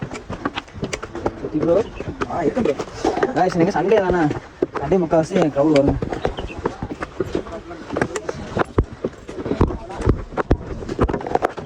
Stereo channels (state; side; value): identical; both; correlation 1.00